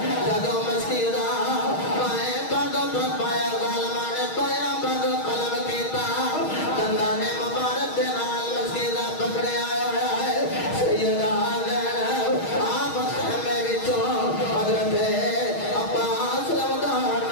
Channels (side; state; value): right; late; 6.4 ms